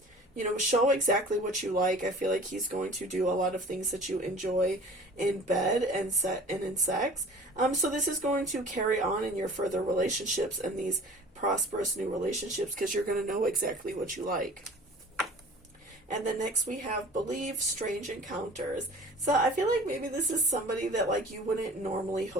you know, show exactly what you like. I feel like he's going to do a lot of things that you enjoy in bed and in sex. So this is going to carry on in your further relationships and these prosperous new relationships, because you're going to know exactly what you like. And then next we have believe strange encounters. So I feel like maybe this is somebody that like you wouldn't normally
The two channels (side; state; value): both; normal; correlation 0.45